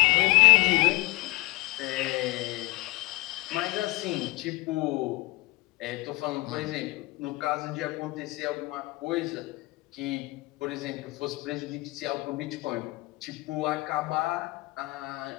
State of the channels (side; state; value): right; quieter; 23.0 dB